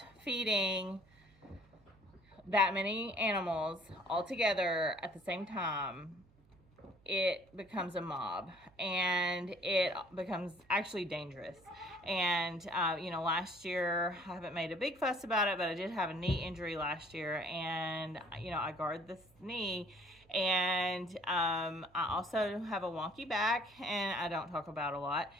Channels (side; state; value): right; noise; hum, 29 dB below the sound